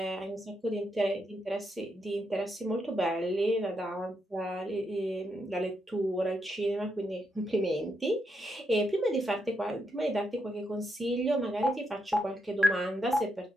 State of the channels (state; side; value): normal; both; correlation 0.81